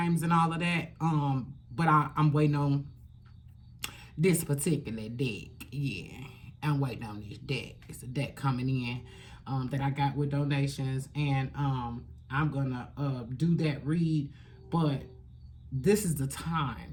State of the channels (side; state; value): both; identical; correlation 1.00